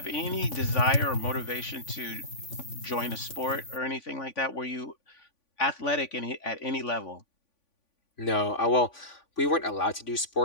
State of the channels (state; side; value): late; right; 3.5 ms